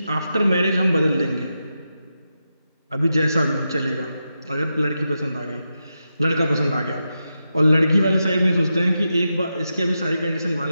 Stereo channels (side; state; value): both; inverted; correlation -0.88